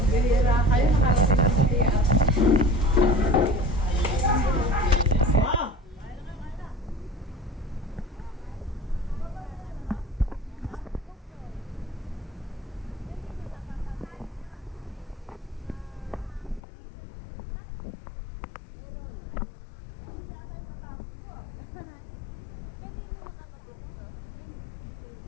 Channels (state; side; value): drops out; right; at 16.6 s